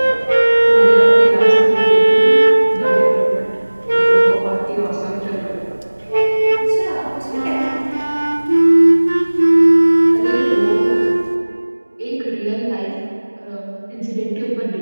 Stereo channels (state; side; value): inverted; both; correlation -1.00